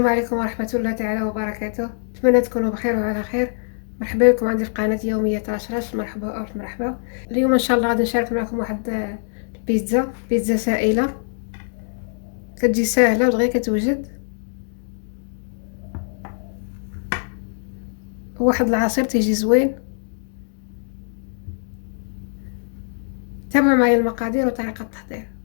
عليكم ورحمة الله تعالى وبركاته. أتمنى تكونوا بخير وعلى خير. مرحبا بكم عندي في قناة يومية رشرش. مرحبا ألف مرحبا. اليوم إن شاء الله غادي نشارك معكم واحد بيتزا سائلة، كتجي ساهلة ودغيا كتوجد. واحد العصير تيجي زوين. تابعوا معايا المقادير وطريقة التحضير.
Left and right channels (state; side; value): silent; right; digital silence